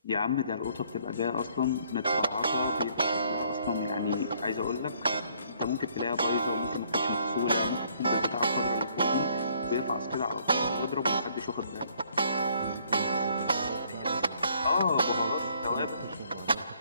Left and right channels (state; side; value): inverted; both; correlation -0.65